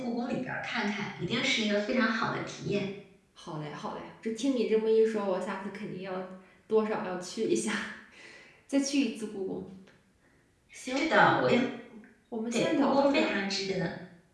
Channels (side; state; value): both; identical; correlation 1.00